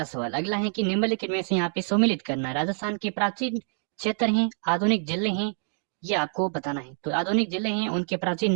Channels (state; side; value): silent; left; 61 dB below the other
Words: सवाल अगला है कि निम्नलिखित में से यहाँ पे सम्मिलित करना है। राजस्थान के प्राचीन क्षेत्र हैं, आधुनिक जिले हैं, ये आपको बताना है। तो आधुनिक जिले हैं, उनके प्राचीन